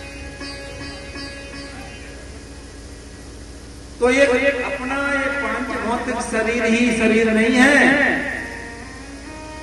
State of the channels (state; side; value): identical; both; correlation 1.00